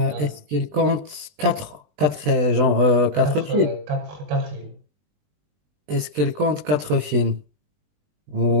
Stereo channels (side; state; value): left; late; 20 ms